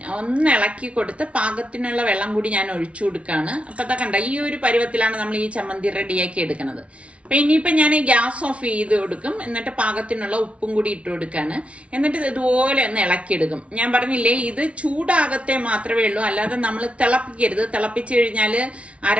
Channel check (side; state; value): left; late; 0.062 ms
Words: ഒന്ന് ഇളക്കി കൊടുത്ത് പാകത്തിനുള്ള വെള്ളം കൂടി ഞാൻ ഒഴിച്ചു കൊടുക്കാണ്. അപ്പൊ അതൊക്കെ കണ്ട ഈ ഒരു പരുവത്തിലാണ് നമ്മൾ ഈ ചമ്മന്തി റെഡിയാക്കി എടുക്കുന്നത്. അപ്പൊ ഇനിയിപ്പോ ഞാൻ ഗ്യാസ് ഓഫ് ചെയ്ത് കൊടുക്കും. എന്നിട്ട് പാകത്തിനുള്ള ഉപ്പും കൂടി ഇട്ട് കൊടുക്കാണ്. എന്നിട്ട് ഇതുപോലെ ഒന്ന് ഇളക്കിയെടുക്കും. ഞാൻ പറഞ്ഞില്ലേ, ഇത് ചൂടാകത്തെ മാത്രമേ ഉള്ളൂ, അല്ലാതെ നമ്മൾ തിളപ്പിക്കരുത്. തിളപ്പിച്ചു കഴിഞ്ഞാൽ